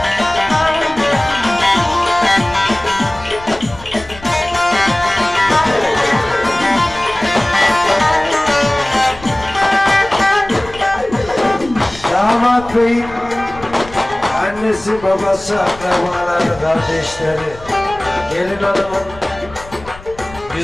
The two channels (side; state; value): left; noise; rumble, 18 dB below the sound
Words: Damat beyim, annesi, babası, akrabaları, kardeşleri, gelin hanımın